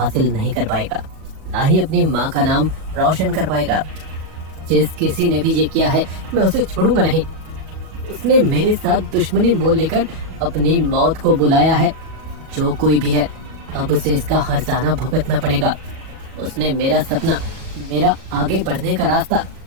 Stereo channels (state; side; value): late; left; 37 ms